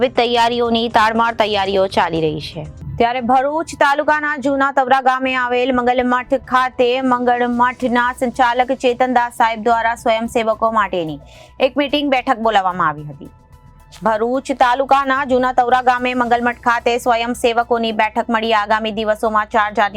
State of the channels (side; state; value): both; identical; correlation 1.00